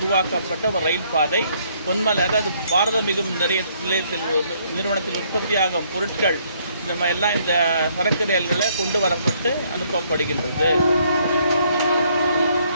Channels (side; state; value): both; inverted; correlation -0.67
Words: ஒரு ரயில் பாதை. பொன்மலை, அதாவது பாரத மிகுமின் நிலையத்தில் நிறுவனத்தில் உற்பத்தியாகும் பொருட்கள் இந்த மாதிரி எல்லாம் இந்த சரக்கு ரயில்களில் கொண்டு வரப்பட்டு அனுப்பப்படுகின்றது.